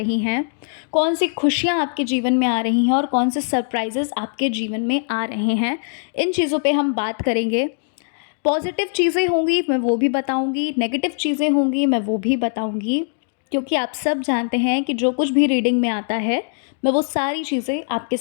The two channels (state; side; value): silent; right; digital silence